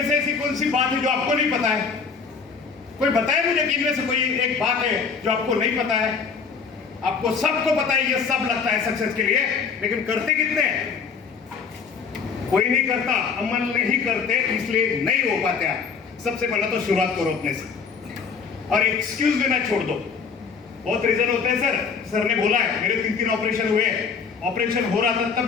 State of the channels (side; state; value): right; quieter; 5.7 dB